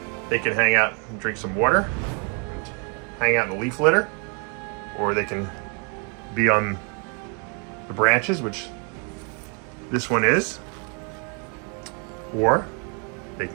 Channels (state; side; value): quieter; left; 36.8 dB